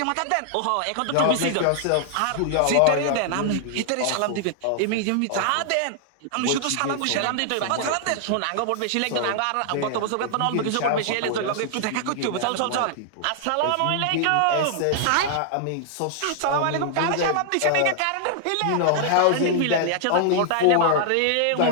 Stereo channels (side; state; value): both; different; correlation 0.00